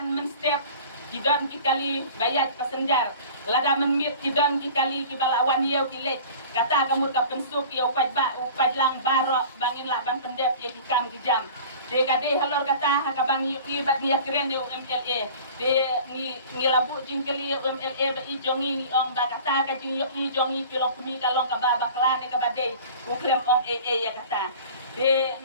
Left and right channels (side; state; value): both; inverted; correlation -0.42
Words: men step kidon ki kali bayat pasenjar lada menmit kidon ki kali ki balawan yau ki lek kata kamu ka pensuk yau upaj lang barok bangin lah ban pendep ya ki kam ki jam de kade halor kata hakabang i bat ni keren yo MLA de ni labu jingkeli MLA ba i jongi ni ong ba kata ka jing yo i jongi kilong kumi kalong ka ba bakla ne ka bade uklem ong ya kata de